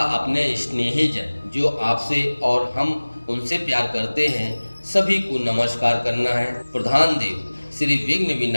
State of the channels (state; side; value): inverted; both; correlation -1.00